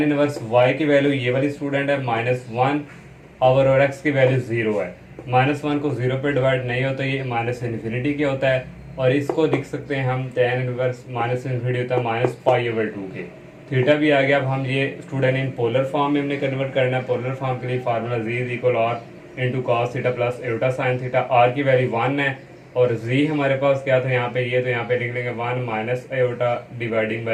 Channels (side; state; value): both; identical; correlation 1.00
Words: inverse y की वैल्यू ये वाली स्टूडेंट है -1 और x की वैल्यू 0 है। -1 को 0 पे डिवाइड नहीं होता, ये -∞ के होता है, और इसको लिख सकते हैं हम tan इनवर्स -∞ होता है -π/2 के। थीटा भी आ गया। अब हम ये स्टूडेंट इन पोलर फॉर्म में हमने कन्वर्ट करना है। पोलर फॉर्म के लिए formula z is equal r into cos theta plus iota sine theta. r की वैल्यू 1 है और z हमारे पास क्या था यहाँ पे, ये तो यहाँ पे लिख लेंगे 1 minus iota dividing